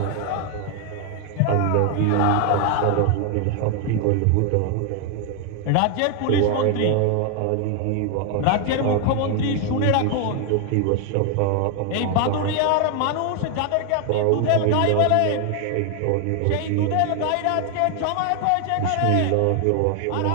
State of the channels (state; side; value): different; both; correlation 0.00